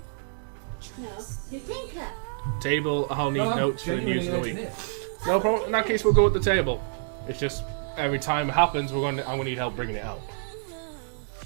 No, you think that. Table, I'll need No, I'm notes for the news genuinely of an the week. engineer. No problem. In that case, we'll go with the table. It's just every time it happens, I'm gonna need help bringing it out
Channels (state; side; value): silent; left; digital silence